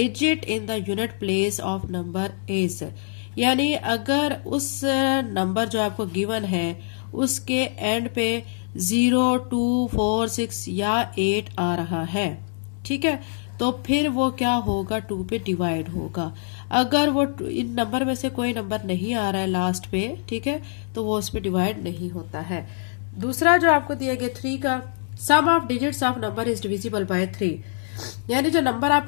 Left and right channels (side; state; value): right; silent; digital silence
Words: in the unit place of number is, यानी अगर उस नंबर जो आपको गिवन है उसके एंड पे 0, 2, 4, 6 या 8 आ रहा है, ठीक है, तो फिर वो क्या होगा, 2 पे डिवाइड होगा। अगर वो इन नंबर में से कोई नंबर नहीं आ रहा है लास्ट पे, ठीक है, तो वो उस पे डिवाइड नहीं होता है। दूसरा जो आपको दिया गया 3 का, sum of digits of number is divisible by 3, यानी जो नंबर